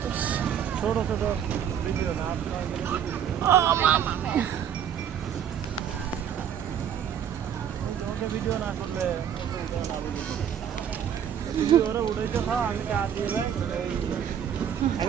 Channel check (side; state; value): left; quieter; 8.9 dB